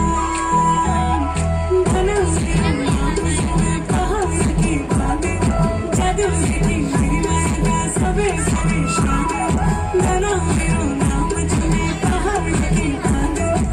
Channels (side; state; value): both; identical; correlation 1.00